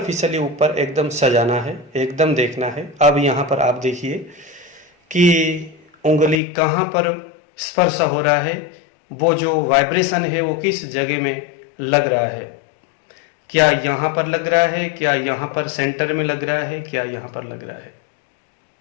ऊपर एकदम सजाना है, एकदम देखना है। अब यहां पर आप देखिए कि उंगली कहां पर स्पर्श हो रहा है, वो जो वाइब्रेशन है वो किस जगह में लग रहा है, क्या यहां पर लग रहा है, क्या यहां पर सेंटर में लग रहा है, क्या यहां पर लग रहा है।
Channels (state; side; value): drops out; right; at 6.4 s